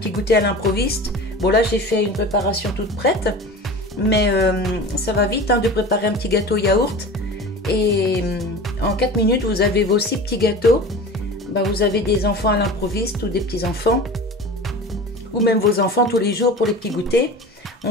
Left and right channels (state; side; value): normal; both; correlation 0.35